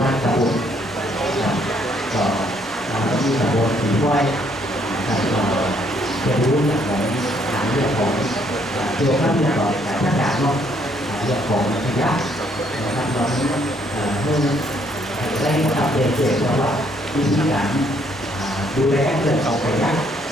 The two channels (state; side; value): normal; both; correlation 0.68